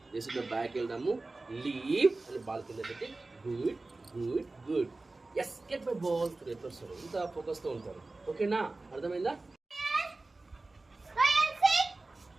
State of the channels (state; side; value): quieter; left; 3.3 dB